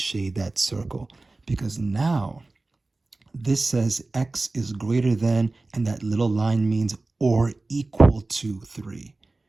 that circle. Because now this says x is greater than, and that little line means or equal to 3.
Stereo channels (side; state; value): left; quieter; 3.2 dB